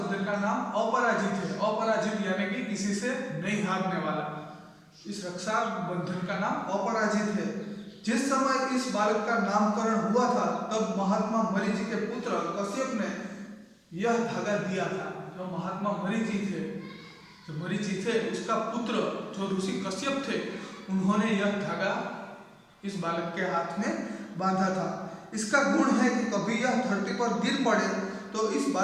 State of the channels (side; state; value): both; identical; correlation 1.00